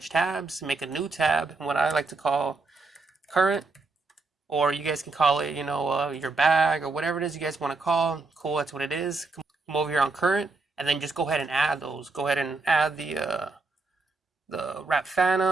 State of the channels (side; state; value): left; quieter; 3.7 dB